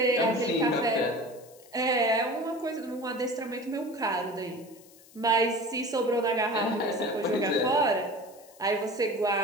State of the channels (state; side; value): noise; left; hiss, 24 dB below the sound